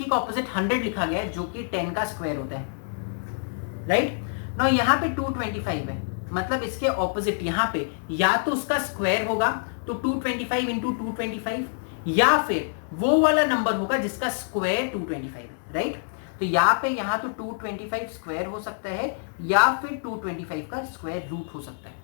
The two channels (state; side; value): silent; right; digital silence